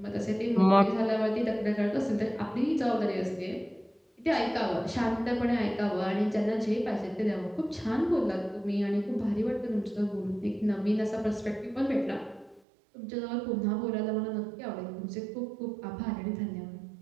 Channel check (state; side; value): drops out; left; at 12.6 s